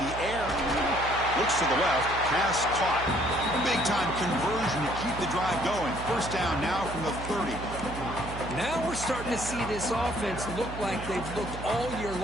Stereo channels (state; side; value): noise; right; hum, 10 dB below the sound